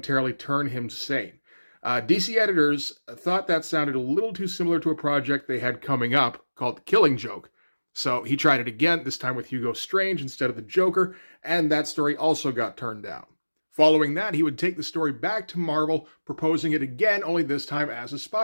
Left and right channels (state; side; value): inverted; both; correlation -1.00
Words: turn him sane. DC editors thought that sounded a little too similar to a project they had coming up called The Killing Joke. So he tried it again, this time with Hugo Strange instead of the Joker, and that story also got turned down. Following that, he would take the story back to Marvel, proposing it again, only this time as a